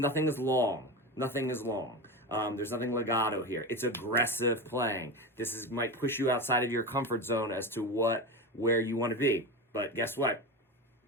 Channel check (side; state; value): both; normal; correlation 0.22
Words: is long. There's nothing legato here. It's aggressive playing. This might push you outside of your comfort zone as to where you want to be. But guess what?